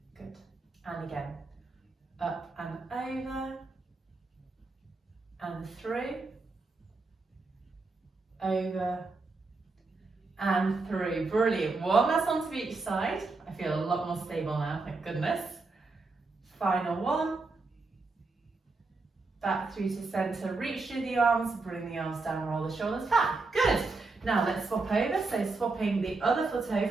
Good. And again, up and over, and through, over, and through. Brilliant. One last one to each side. I feel a lot more stable now, thank goodness. Final one. Back through to centre, reach through the arms, bring the arms down, roll the shoulders back. Good. Now let's swap over, so swapping the other foot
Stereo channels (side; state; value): left; quieter; 3.7 dB